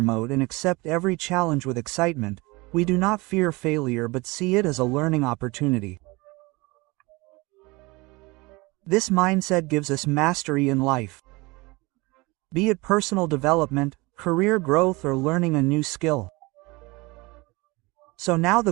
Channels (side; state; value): left; quieter; 24.0 dB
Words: mode and accept every challenge with excitement, we do not fear failure but see it as a learning opportunity. This mindset gives us mastery in life, be it personal development, career growth, or learning a new skill. So now the